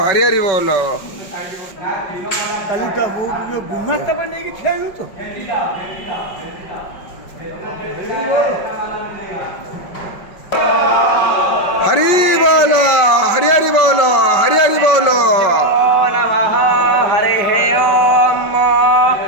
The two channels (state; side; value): late; right; 5.1 ms